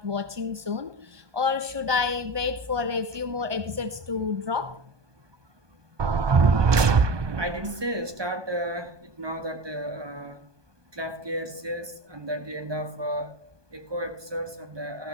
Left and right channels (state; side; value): late; left; 1.2 ms